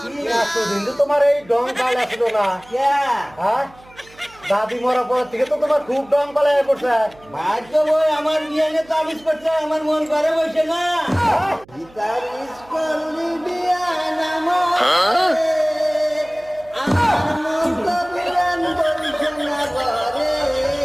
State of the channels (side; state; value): right; noise; hum, 25 dB below the sound